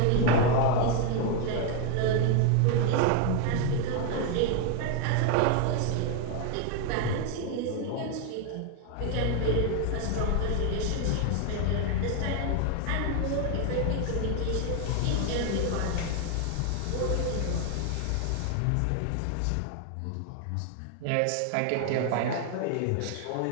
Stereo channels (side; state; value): both; different; correlation 0.01